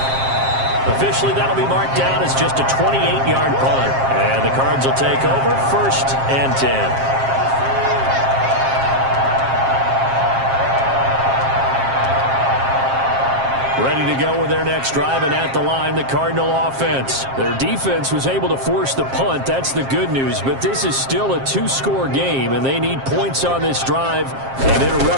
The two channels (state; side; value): late; left; 7.5 ms